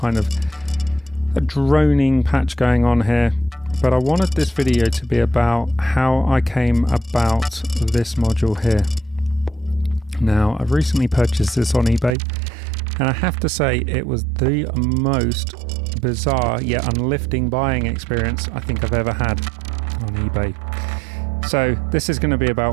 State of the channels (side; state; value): left; drops out; at 12.1 s